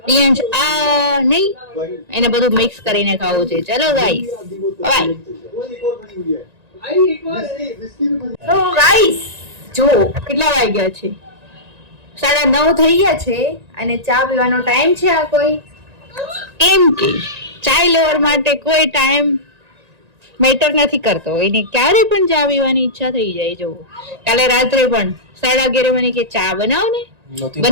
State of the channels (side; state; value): left; late; 1.9 ms